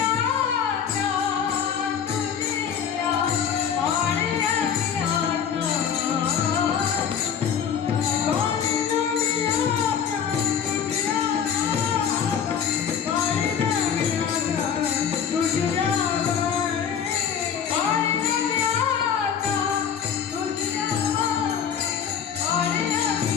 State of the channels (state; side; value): quieter; right; 7.8 dB